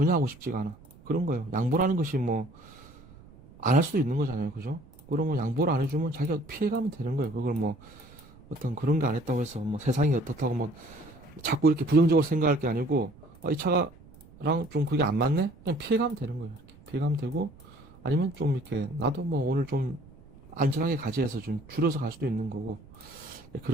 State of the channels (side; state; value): right; noise; rumble, 23 dB below the sound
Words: 하고 싶지가 않아. 그런 거예요. 양보라는 것이 뭐 안 할 수도 있는 거잖아요. 그죠? 그러면 양보를 안 해주면 자기가 피해가면 되는 거예요. 그걸 뭐 어떤 그런 게 안 했다고 해서 뭐 세상이 어떻다고 뭐 자꾸 이렇게 부정적으로 생각할 게 아니고 이 차가랑 좀 그게 안 맞네? 그냥 피해가면 되는 거예요. 이렇게 피해가면 되고 아니면 좀 이렇게 나도 뭐 오늘 좀 안전하게 가지 해서 좀 줄여서 갈 수도 있는 거고